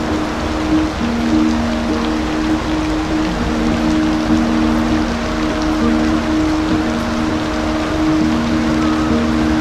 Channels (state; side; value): identical; both; correlation 1.00